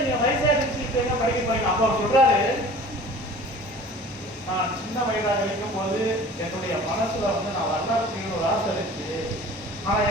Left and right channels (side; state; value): both; normal; correlation 0.44